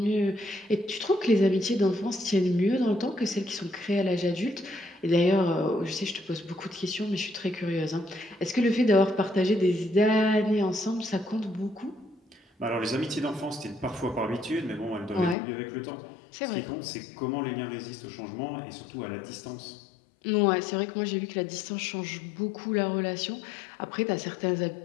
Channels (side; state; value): right; drops out; at 15.4 s